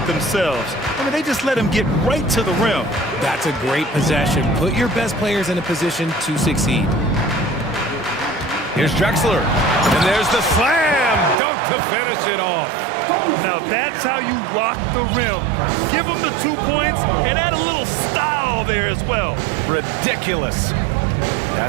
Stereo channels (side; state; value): left; drops out; at 11.4 s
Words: themselves. I mean, they just let him get right to the rim. That's a great possession. Put your best players in a position to succeed. Here's Drexler. And there's the slam dunk to finish it off. Now that's how you rock the rim. Give him the 2 points and add a little style there as well. Ridiculous.